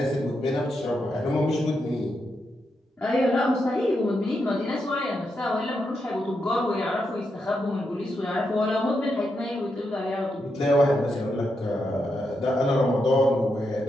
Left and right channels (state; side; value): normal; both; correlation 0.84